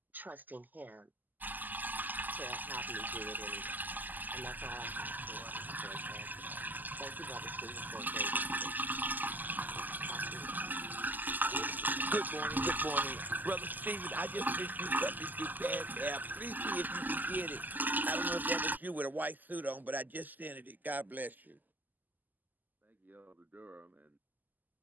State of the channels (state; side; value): late; left; 0.085 ms